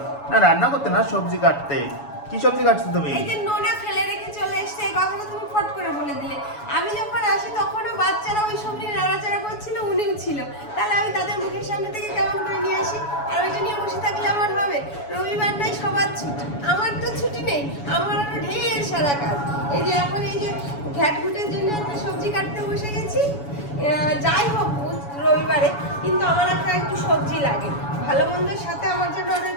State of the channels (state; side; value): late; right; 7.1 ms